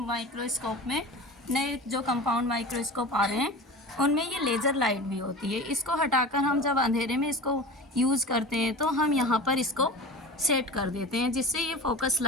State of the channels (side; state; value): both; normal; correlation 0.33